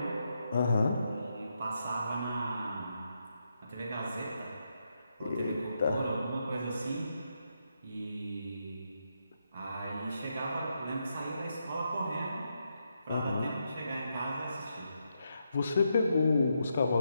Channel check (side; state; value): both; inverted; correlation -0.82